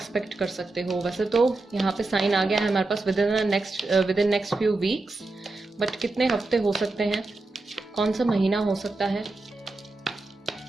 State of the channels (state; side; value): quieter; left; 3.2 dB